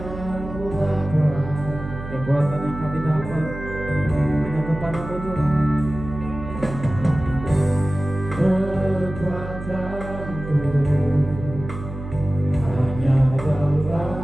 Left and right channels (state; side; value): noise; right; hum, 10 dB below the sound